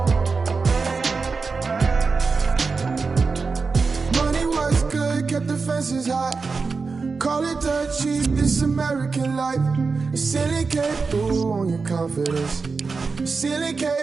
Money was good, kept the fences high. Call it dirt cheap, this American life. The ceiling came through on your confidence. The ceiling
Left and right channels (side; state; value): left; quieter; 4.6 dB